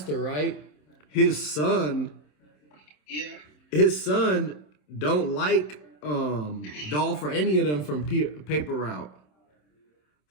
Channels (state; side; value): late; right; 27 ms